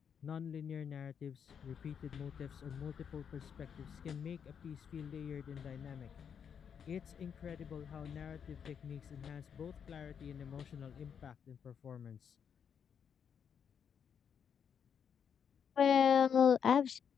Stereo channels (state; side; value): quieter; right; 7.5 dB